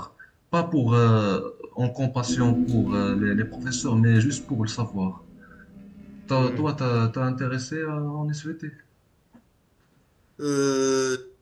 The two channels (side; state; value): both; identical; correlation 1.00